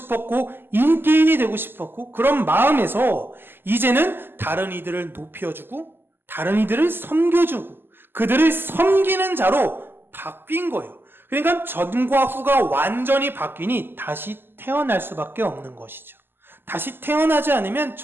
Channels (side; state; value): left; late; 0.099 ms